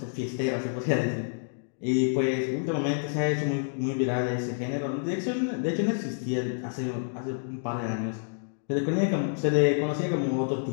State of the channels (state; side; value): silent; right; digital silence